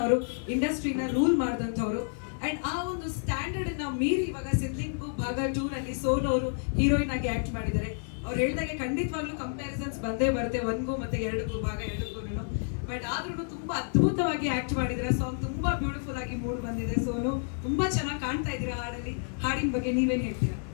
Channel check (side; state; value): right; silent; digital silence